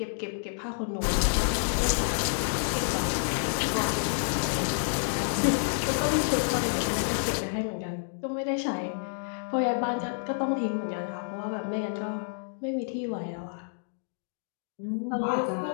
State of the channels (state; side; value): silent; right; digital silence